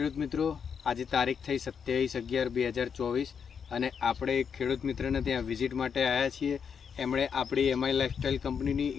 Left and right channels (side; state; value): right; quieter; 6.8 dB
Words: મિત્રો. આજે તારીખ થઈ 27/11/2024 અને આપણે એક ખેડૂત મિત્રને ત્યાં વિઝિટ માટે આવ્યા છીએ. એમણે આપણી એમઆઈ લાઇફસ્ટાઈલ કંપનીની